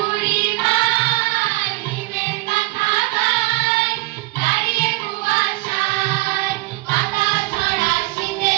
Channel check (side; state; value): left; quieter; 21.9 dB